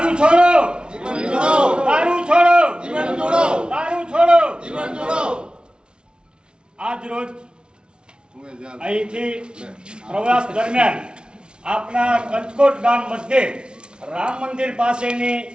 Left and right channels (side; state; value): left; late; 0.055 ms